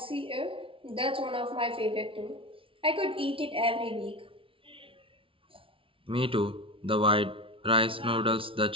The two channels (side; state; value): left; late; 0.26 ms